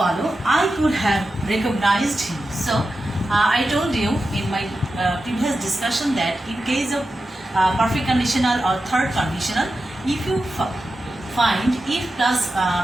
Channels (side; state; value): both; normal; correlation 0.91